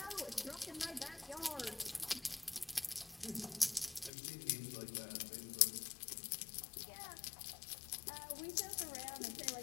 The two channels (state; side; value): drops out; right; at 4.1 s